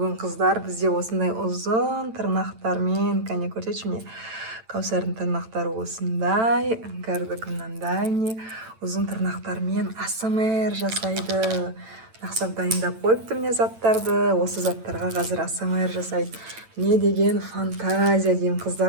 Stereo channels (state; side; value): late; left; 9.0 ms